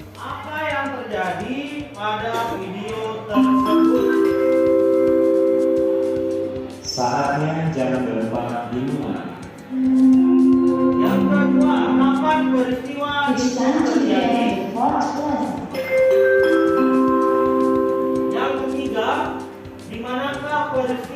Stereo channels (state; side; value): identical; both; correlation 1.00